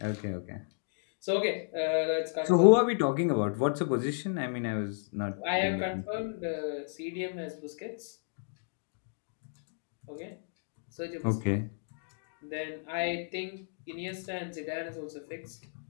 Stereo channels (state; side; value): silent; right; digital silence